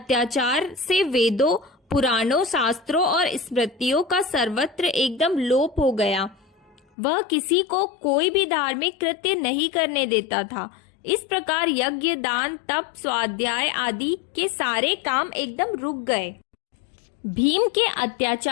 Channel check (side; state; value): right; drops out; at 6.8 s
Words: से वेदों, पुराणों, शास्त्रों और स्मृतियों का सर्वत्र एकदम लोप हो गया। वह किसी को कोई भी धार्मिक कृत्य नहीं करने देता था। इस प्रकार यज्ञ, दान, तप, स्वाध्याय आदि के सारे काम एकदम रुक गए। भीम के